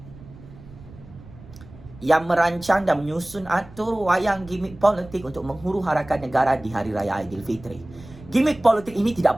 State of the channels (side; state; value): right; noise; rumble, 19 dB below the sound